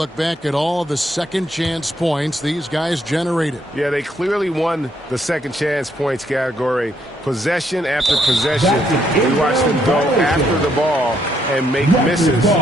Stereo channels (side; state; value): both; normal; correlation 0.73